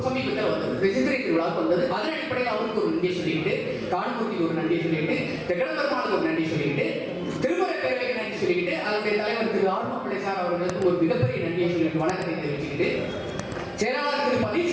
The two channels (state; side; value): identical; both; correlation 1.00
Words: சமீபத்தில் வந்தது, சித்திரை திருவிழாவுக்கு வந்தது. அதன் அடிப்படையில் அவருக்கு ஒரு நன்றி சொல்லிட்டு, தான்மூர்த்திக்கு ஒரு நன்றி சொல்லிட்டு, தெக்கடம்பெருமாளுக்கு ஒரு நன்றி சொல்லிட்டு, திருமுறை பேரவைக்கு நன்றி சொல்லிட்டு, அதனுடைய தலைவர் திரு ஆர்மப்பிள்ளை சார் அவர்களுக்கு ஒரு மிகப்பெரிய நன்றியை சொல்லிட்டு வணக்கத்தை தெரிவிச்சுக்கிட்டு, செயலாளர் திரு